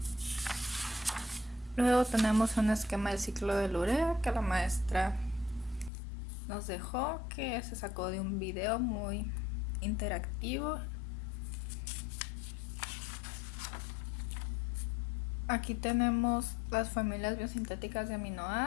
Luego tenemos un esquema del ciclo de urea que la maestra nos dejó, que se sacó de un video muy interactivo. Aquí tenemos las familias biosintéticas de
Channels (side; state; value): right; drops out; at 5.9 s